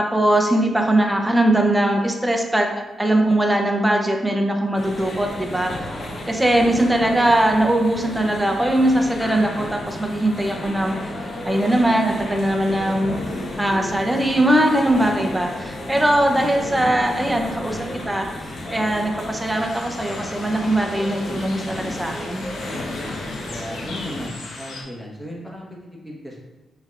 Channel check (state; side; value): normal; both; correlation 0.88